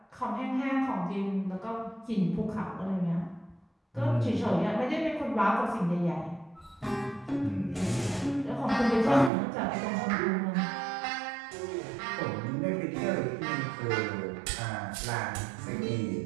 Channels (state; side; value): drops out; left; at 9.3 s